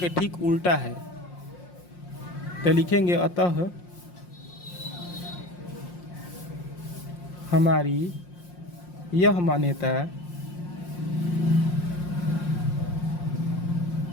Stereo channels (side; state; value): right; late; 5.6 ms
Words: ठीक उल्टा है। तो लिखेंगे अतः हमारी यह मान्यता